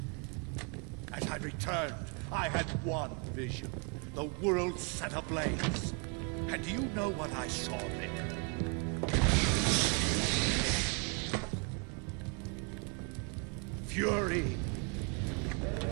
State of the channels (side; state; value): left; quieter; 35.2 dB